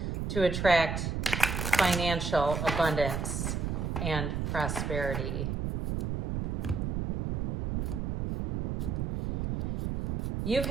to attract financial abundance and prosperity? You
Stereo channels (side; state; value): right; noise; rumble, 2 dB below the sound